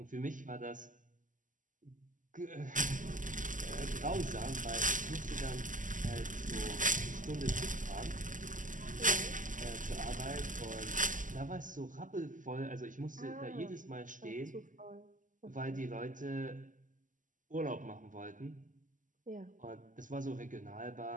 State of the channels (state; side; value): late; left; 0.38 ms